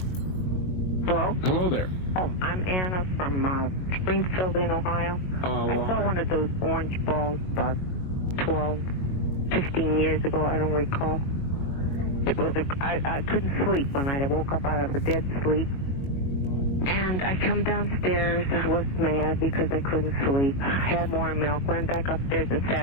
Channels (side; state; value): right; late; 21 ms